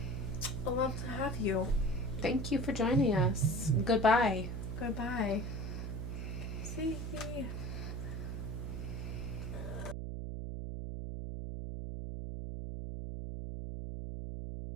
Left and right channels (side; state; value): right; noise; hum, 4 dB below the sound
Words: love to have you. Thank you for joining us. Goodbye. Goodbye. See you.